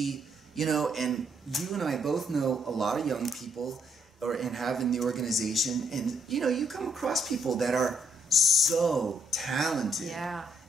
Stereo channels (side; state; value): both; normal; correlation 0.72